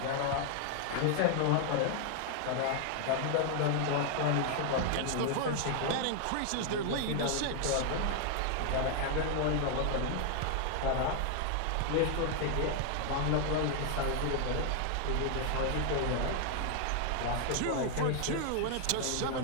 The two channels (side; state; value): both; different; correlation 0.00